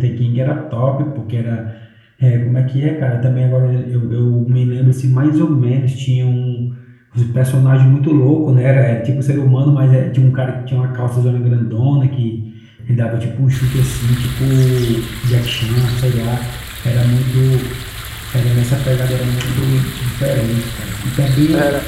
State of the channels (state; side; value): identical; both; correlation 1.00